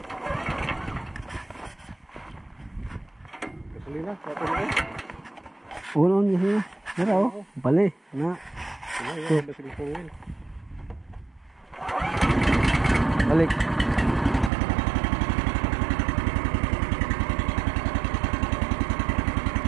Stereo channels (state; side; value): drops out; left; at 14.5 s